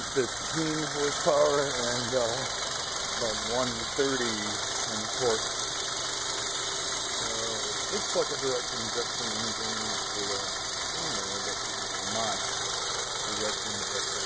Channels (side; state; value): left; noise; rumble, 22 dB below the sound